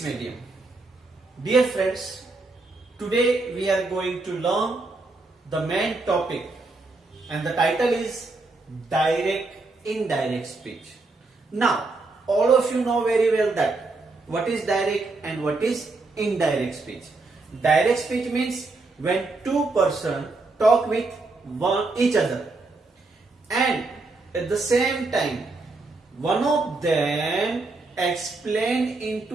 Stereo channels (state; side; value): quieter; left; 3.4 dB